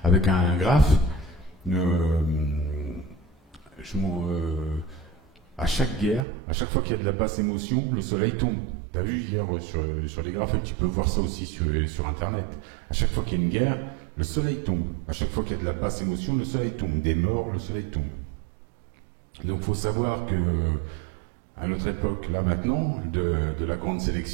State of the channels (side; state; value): left; drops out; at 6.2 s